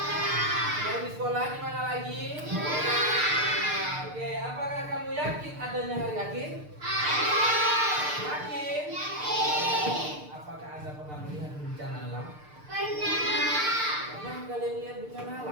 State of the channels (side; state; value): left; late; 6.7 ms